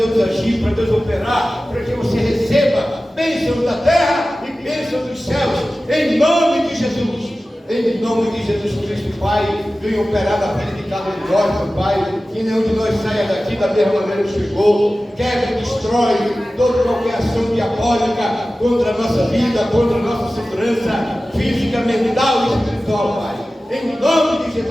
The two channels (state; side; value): normal; both; correlation 0.96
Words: agir, para Deus operar, para que você receba bênçãos da terra e bênçãos dos céus, em nome de Jesus. Em nome de Jesus Cristo, Pai, venha operar na vida de cada um de nós, meu Pai, que nenhum de nós saia daqui da mesma maneira que chegou. Quebra e destrói toda qualquer ação diabólica contra a nossa vida, contra a nossa segurança física, mental e espiritual, Pai. Em nome de